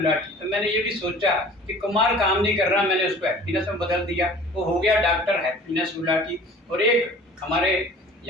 तो मैंने ये भी सोचा कि कुमार काम नहीं कर रहा, मैंने उसको हैप्पीनेस में बदल दिया, वो हो गया डॉक्टर हैप्पीनेस गुलाटी। और एक हमारे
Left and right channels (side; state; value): both; normal; correlation 0.46